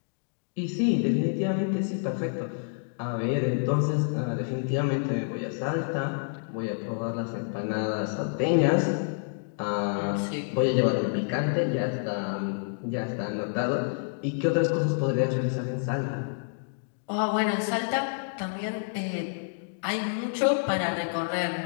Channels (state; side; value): silent; right; digital silence